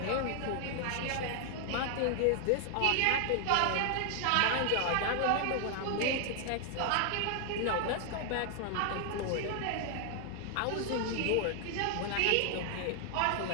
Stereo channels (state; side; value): different; both; correlation 0.00